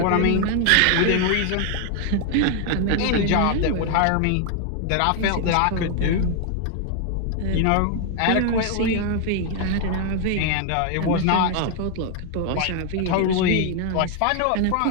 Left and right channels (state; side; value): different; both; correlation 0.00